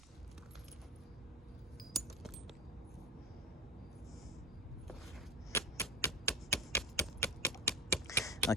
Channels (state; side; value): normal; both; correlation 0.20